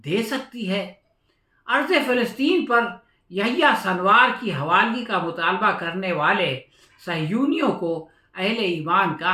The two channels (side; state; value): both; identical; correlation 1.00